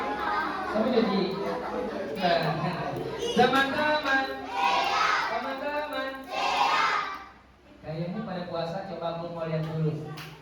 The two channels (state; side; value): identical; both; correlation 1.00